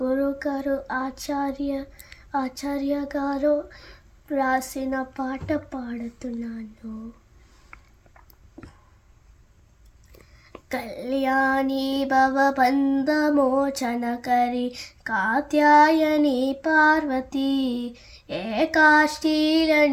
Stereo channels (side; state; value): both; identical; correlation 1.00